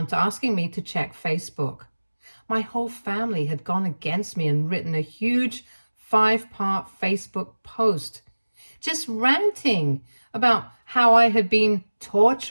asking me to check Facebook. My whole family had gone against me and written a huge 5-part Facebook post, just ranting about how I had been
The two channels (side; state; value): both; inverted; correlation -1.00